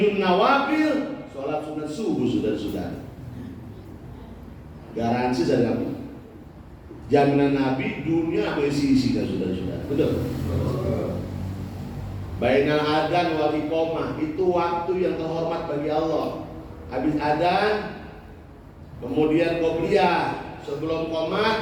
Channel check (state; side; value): identical; both; correlation 1.00